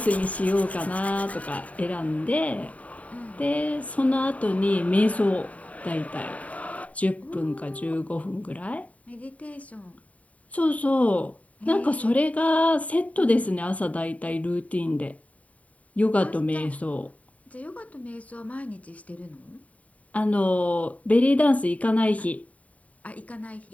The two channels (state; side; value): late; right; 0.069 ms